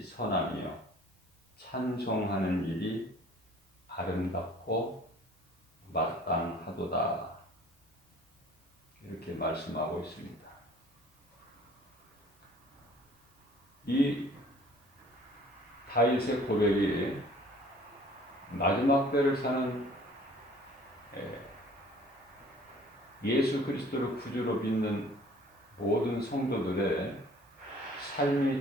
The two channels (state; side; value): normal; both; correlation 0.52